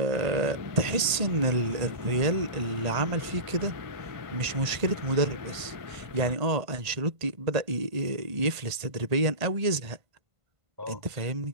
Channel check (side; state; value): left; late; 1.8 ms